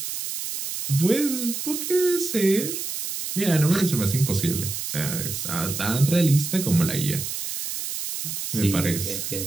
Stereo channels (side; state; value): right; noise; hiss, 5 dB below the sound